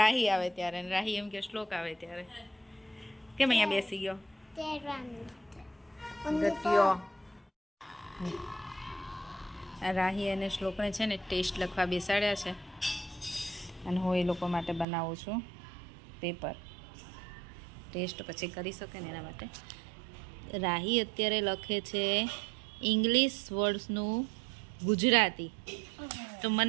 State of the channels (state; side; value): drops out; left; at 14.9 s